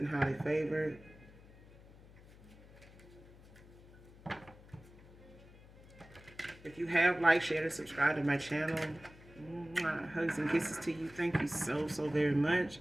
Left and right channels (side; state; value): left; noise; hum, 21 dB below the sound